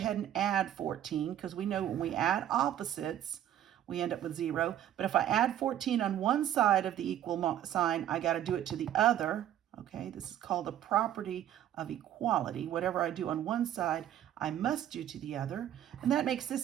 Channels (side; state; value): left; quieter; 11.3 dB